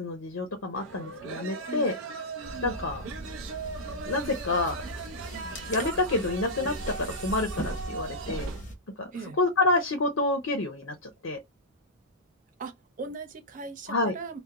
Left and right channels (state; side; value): normal; both; correlation -0.10